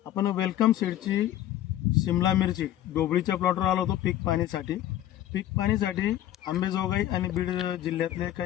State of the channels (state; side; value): quieter; right; 12.6 dB